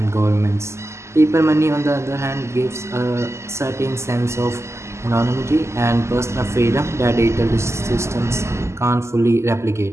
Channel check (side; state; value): left; late; 0.13 ms